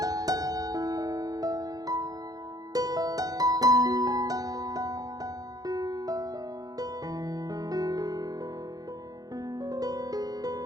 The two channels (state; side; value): late; left; 0.18 ms